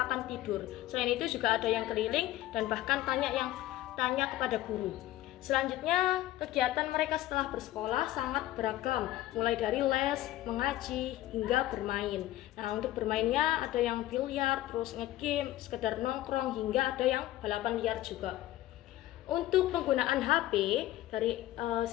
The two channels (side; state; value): right; quieter; 15.0 dB